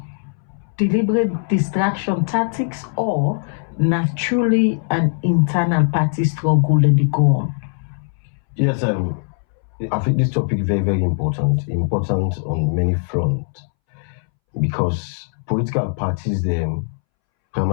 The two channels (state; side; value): silent; right; 64 dB below the other